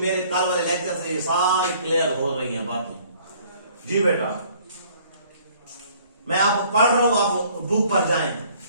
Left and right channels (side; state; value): both; inverted; correlation -0.57